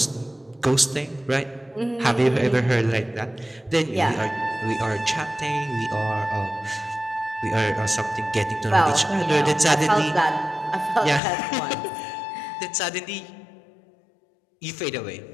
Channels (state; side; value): drops out; right; at 11.2 s